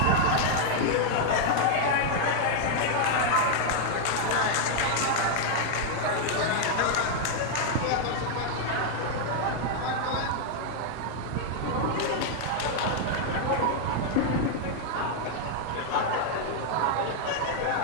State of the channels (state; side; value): different; both; correlation 0.00